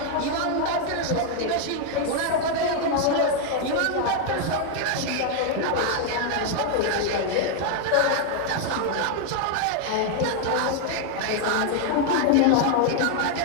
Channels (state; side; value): different; both; correlation 0.00